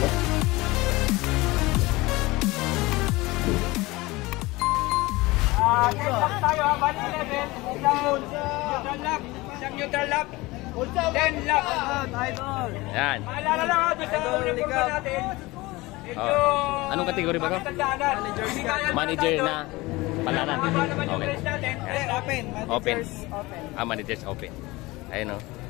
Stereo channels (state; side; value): quieter; right; 21.3 dB